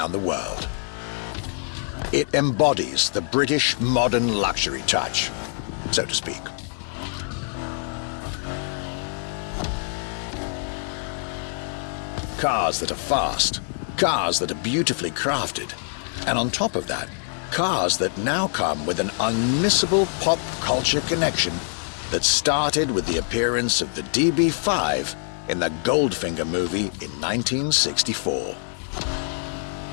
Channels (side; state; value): right; silent; 58 dB below the other